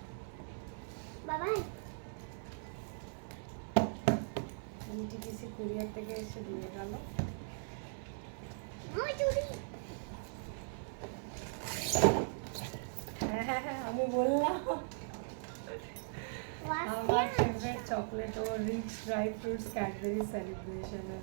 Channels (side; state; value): left; silent; 52 dB below the other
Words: বাবা এনটিপিসি কুরিয়ার থেকে এসে দিয়ে গেল। আমার চুড়ি। হ্যাঁ হ্যাঁ হ্যাঁ, আমি বললাম আমার ফেভারিট চকলেট ও রিচ ড্রাই ফ্রুটস ক্যাডবেরি সেলিব্রেশনের।